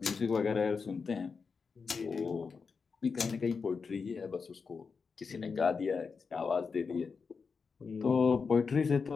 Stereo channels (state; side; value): quieter; right; 5.2 dB